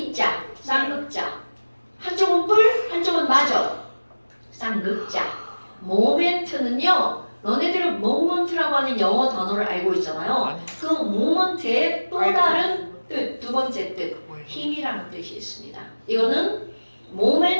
쌍극자. 한쪽은 뿔, 한쪽은 마저. 쌍극자. 모멘트는요. 너네들은 모먼트라고 하는 영어 단어를 알고 있잖아요. 아니 그 모먼트의 또 다른 뜻, 두 번째 뜻, 뭐예요? 힘이라는 뜻이 있습니다. 이거는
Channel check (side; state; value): both; inverted; correlation -1.00